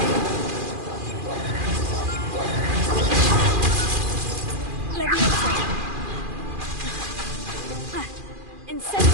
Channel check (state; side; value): late; left; 2.4 ms